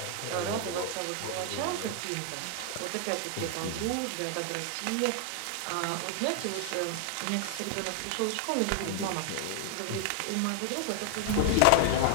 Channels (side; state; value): both; different; correlation 0.00